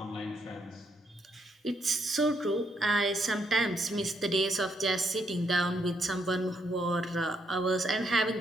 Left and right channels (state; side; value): normal; both; correlation 0.75